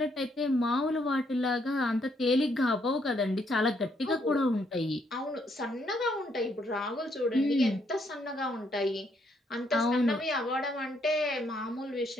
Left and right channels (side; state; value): both; normal; correlation 0.72